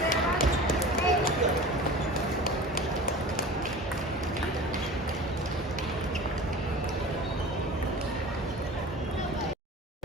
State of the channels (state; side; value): normal; both; correlation 0.37